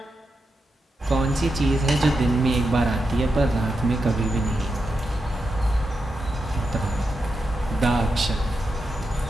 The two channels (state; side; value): normal; both; correlation 0.87